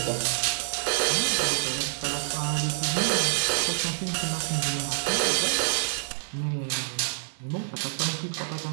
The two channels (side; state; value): left; silent; digital silence